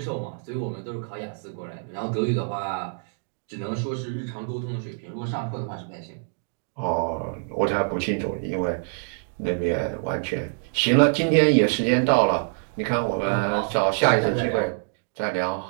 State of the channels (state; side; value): silent; left; 61 dB below the other